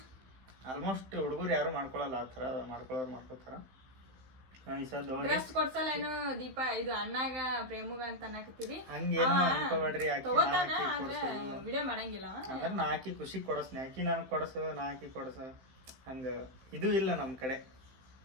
ಆಲ್ಮೋಸ್ಟ್ ಹುಡುಗರು ಯಾರು ಮಾಡ್ಕೊಳಲ್ಲ. ಆ ಥರ ಮಾಡ್ಕೊಳ್ಳೋರು ಮಾಡ್ಕೋತಾರ. ಕೊಡ್ಸಲ್ಲೇನು ದೀಪ ಇದು ಅಣ್ಣಾಗ ಪ್ರೇಮಗ ಅಂತ ಅನ್ನಕತ್ತೀವಿ. ಹಂಗೇನು ಅನ್ಕೋಬೇಡ್ರಿ. ವಿಡಿಯೋ ಮಾಡಂಗಿಲ್ಲ ಅಂದ್ರೆ ನಾ ಹಾಕಿ ಖುಷಿ ಕೊಡಸ್ನಿ. ಹಾಕಿ ನಾನು ಕೊಡಸು, ನಾ ಹಾಕಿ ಕೊಡಸು ಹಂಗ ಇದು ಇಲ್ಲ ನಮ್ಮ ಕಡೆ.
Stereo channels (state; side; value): late; left; 15 ms